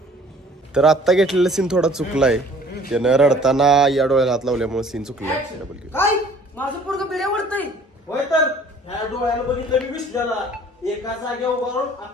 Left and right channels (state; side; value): normal; both; correlation 0.53